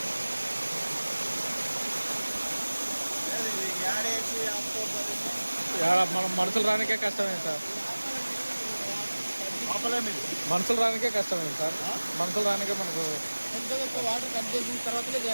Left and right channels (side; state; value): both; inverted; correlation -1.00